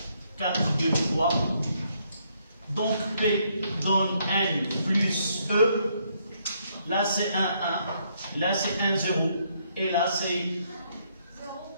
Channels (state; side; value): inverted; both; correlation -0.72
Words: 4, 2, 3. Donc P donne N plus E. Là c'est 1, 1. Là c'est 1, 0. Et là c'est